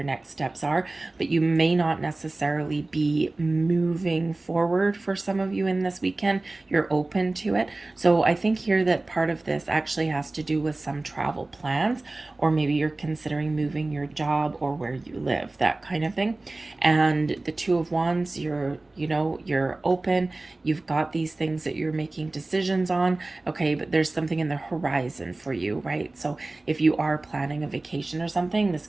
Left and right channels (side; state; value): left; quieter; 3.0 dB